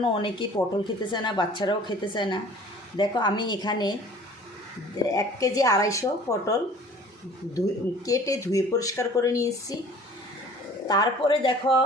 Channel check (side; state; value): both; normal; correlation 0.49